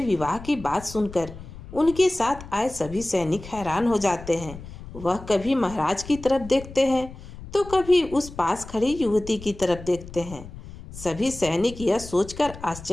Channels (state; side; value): noise; left; rumble, 15 dB below the sound